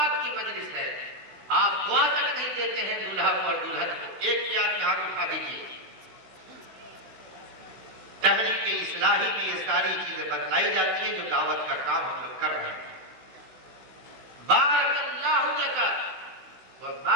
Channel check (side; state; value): left; late; 16 ms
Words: کی مجلس ہے. آپ دعا تک نہیں دیتے ہیں دولہا کو اور دلہن کو. ایک بھی آدمی ہاتھ اٹھا دیجیے. تحریک اصلاحی میں یہ ساری چیزیں بتلائی جاتی ہیں جو دعوت کا کام ہم لوگ کر رہے ہیں. بارک اللہ لک